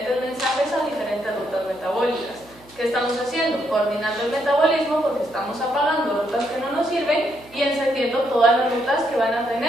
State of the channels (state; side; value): noise; right; hum, 27 dB below the sound